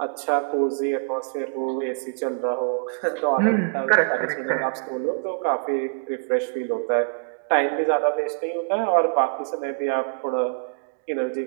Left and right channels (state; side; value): silent; left; digital silence